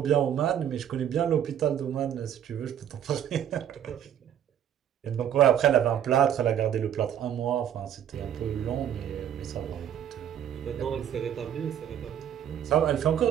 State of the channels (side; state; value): left; quieter; 9.8 dB